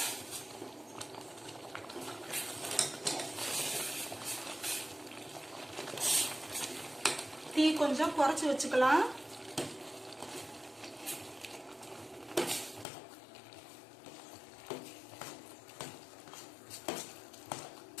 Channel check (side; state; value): right; drops out; at 12.9 s